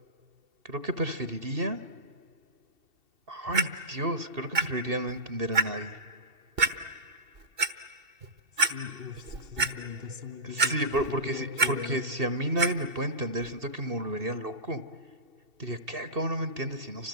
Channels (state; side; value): late; left; 2.7 ms